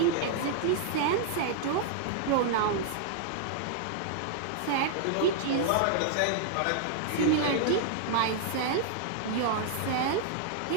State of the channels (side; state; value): both; different; correlation -0.01